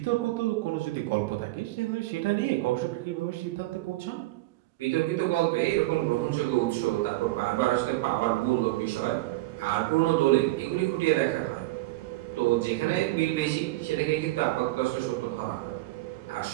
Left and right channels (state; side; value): quieter; left; 18.8 dB